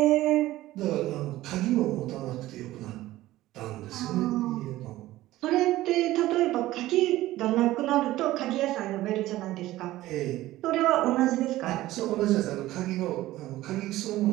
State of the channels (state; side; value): quieter; left; 16.2 dB